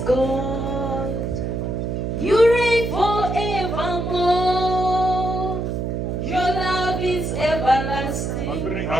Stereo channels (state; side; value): noise; right; hum, 2 dB below the sound